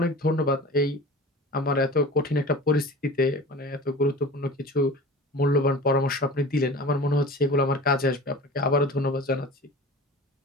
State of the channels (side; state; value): both; normal; correlation 0.37